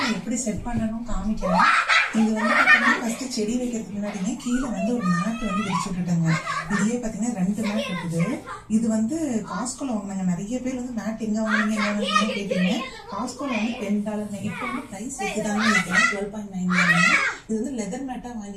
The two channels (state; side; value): identical; both; correlation 1.00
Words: நான் எப்படி செட் பண்ணணும் காமிக்கிறேன். இது வந்து பார்த்தீங்கன்னா ஃபர்ஸ்ட் செடி வைக்கிறதுக்கு முன்னாடியே கீழே வந்து ஒரு மேட் வந்து விரிச்சு விட்டுட்டாங்க. இதுலயே பார்த்தீங்கன்னா 2 மேட் இருக்குது. இது வந்து காஸ்கோல வாங்கினாங்க. நிறைய பேர் வந்து மேட் எங்க வாங்கினீங்க கேட்டீங்க. காஸ்கோல வந்து $10. இப்போ வந்து ப்ரைஸ் இருக்குதான்னு நினைக்கிறேன் 12.9. இது வந்து லெதர் மேட்டா